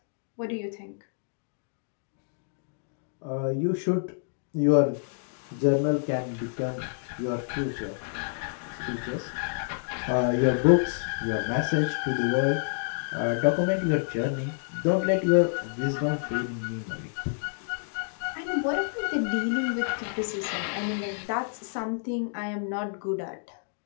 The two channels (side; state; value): right; silent; digital silence